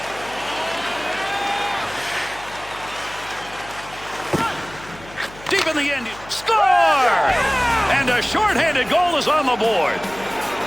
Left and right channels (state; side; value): noise; left; hum, 19 dB below the sound